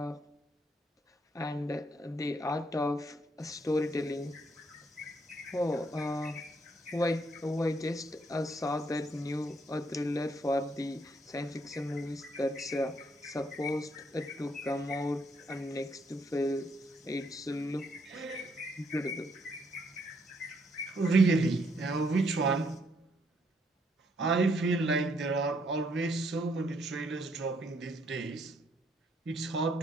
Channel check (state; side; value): normal; both; correlation 0.71